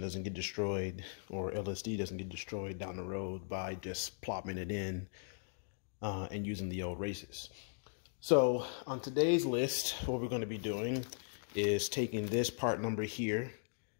get destroyed, or LSD doesn't get destroyed down the road by just plopping it in and using the old races. So on today's list, what we're going to be doing is taking this part number here.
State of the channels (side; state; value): right; silent; digital silence